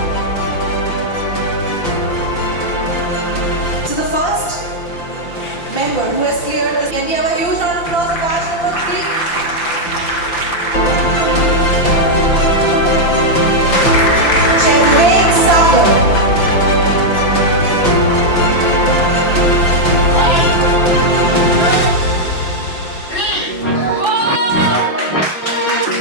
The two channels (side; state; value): right; late; 5.8 ms